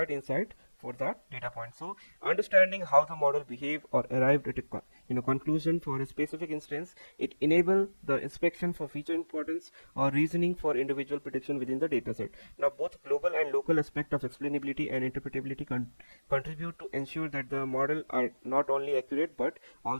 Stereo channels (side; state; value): both; inverted; correlation -1.00